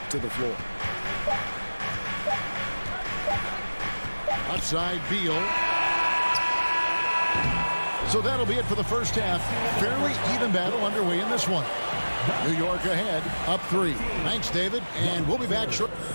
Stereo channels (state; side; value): inverted; both; correlation -1.00